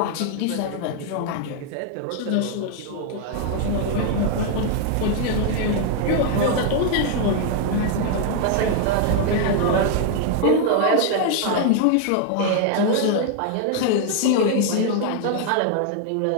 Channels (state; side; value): different; both; correlation 0.00